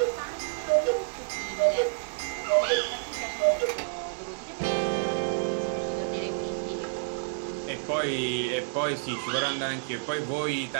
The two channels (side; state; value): left; silent; digital silence